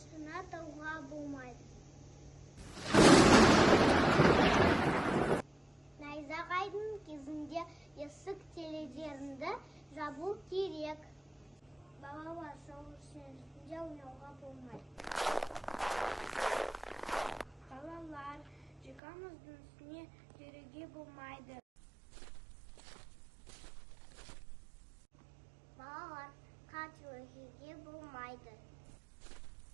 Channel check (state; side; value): drops out; left; at 19.0 s